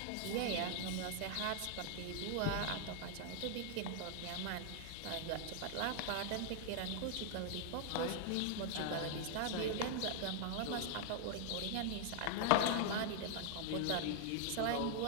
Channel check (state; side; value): different; both; correlation 0.00